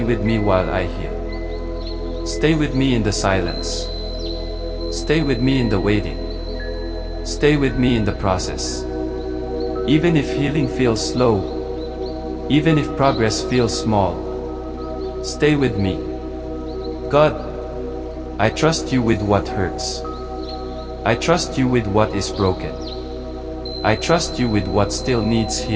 with me while I heal. Stay with me in the silence. Stay with me in the waiting. Stay with me in the process. Even if healing feels slow, even if progress feels small, stay with me. God, I trust you with what hurts. I trust you with what is broken. I trust you with what still needs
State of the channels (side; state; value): both; identical; correlation 1.00